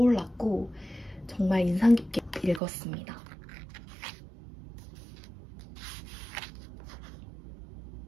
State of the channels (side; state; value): left; drops out; at 2.6 s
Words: 정말 인상 깊게 읽었습니다.